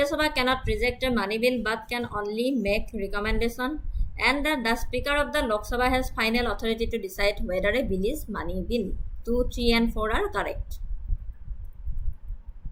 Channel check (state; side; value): identical; both; correlation 1.00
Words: Sabha cannot reject a money bill but can only make recommendation. And the Speaker of the Lok Sabha has final authority to decide whether a bill is money bill. 2, 3 and 4 are correct.